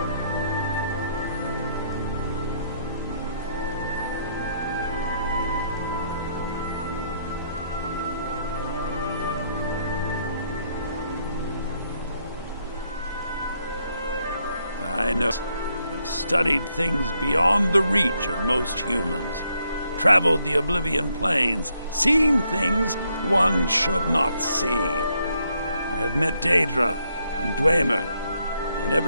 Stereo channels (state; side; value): inverted; both; correlation -0.74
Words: I know. I've studied things beyond the reach of most humans, traveled the Oblivion Plains, seen things one should not see. I have met Daedra and Dwemer, and